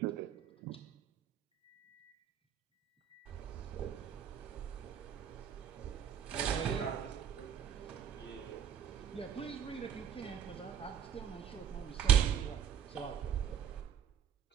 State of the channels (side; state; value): left; quieter; 8.7 dB